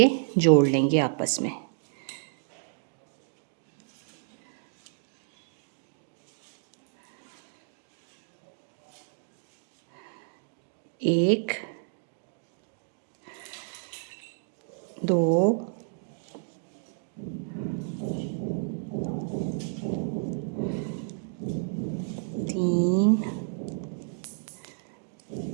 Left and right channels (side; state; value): left; silent; digital silence